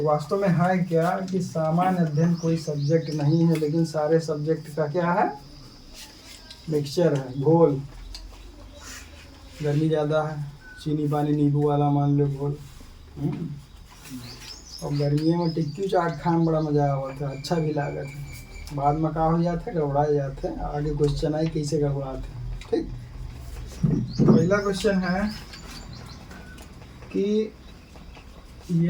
वास्तव में है क्या कि सामान्य अध्ययन कोई सब्जेक्ट नहीं है, लेकिन सारे सब्जेक्ट का क्या है, मिक्सचर है, घोल। गर्मी ज़्यादा है, चीनी पानी नींबू वाला मान लो घोल। और गर्मियों में टिक्की चाट खाने में बड़ा मज़ा आता है, अच्छा भी लागत है। बाद में का हो जाते हैं, गड़बड़ा जाते हैं। आगे क्वेश्चन आई कैसे गड़बड़ाते हैं, ठीक। पहला क्वेश्चन है कि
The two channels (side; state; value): both; identical; correlation 1.00